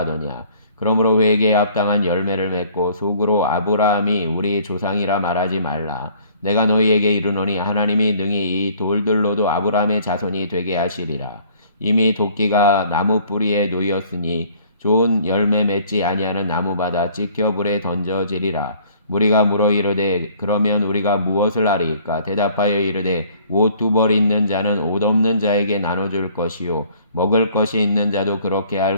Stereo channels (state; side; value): inverted; both; correlation -0.56